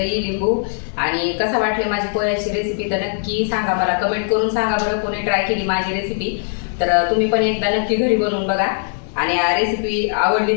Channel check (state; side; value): silent; right; digital silence